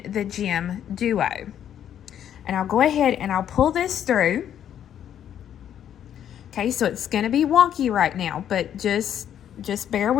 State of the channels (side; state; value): right; quieter; 9.9 dB